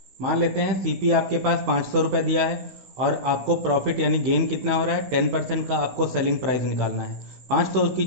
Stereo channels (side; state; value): left; late; 16 ms